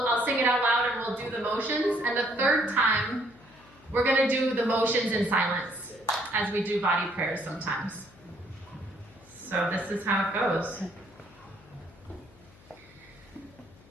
sing it out loud and we'll do the motions. And the third time, we're going to do the motions in silence, as we do body prayers sometimes. So this is how it goes.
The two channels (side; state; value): left; noise; hum, 26 dB below the sound